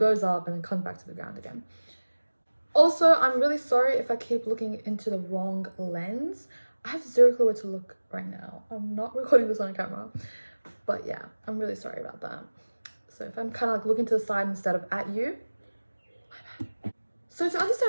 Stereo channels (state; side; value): inverted; both; correlation -1.00